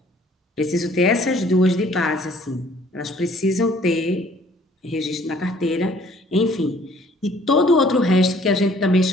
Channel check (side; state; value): both; normal; correlation 0.58